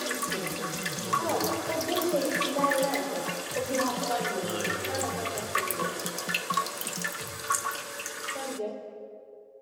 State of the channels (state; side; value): identical; both; correlation 1.00